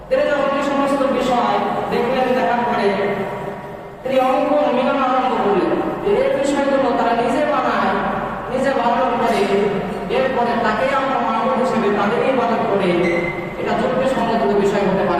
তিনি যখন এই সমস্ত বিষয় দেখলেন, দেখার পরে তিনি অঙ্কন মিলন আরম্ভ করলেন যে এই বিষয়গুলো তারা নিজে বানায়, নিজে বানানোর পরে এরপরে তাকে আমরা মানব হিসেবে তাদেরই ইবাদত করে, এটা যুক্তিসঙ্গত বিষয় হতে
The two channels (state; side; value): identical; both; correlation 1.00